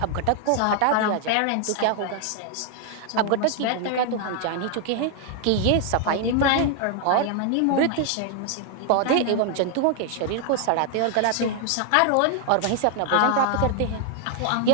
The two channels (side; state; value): both; different; correlation 0.00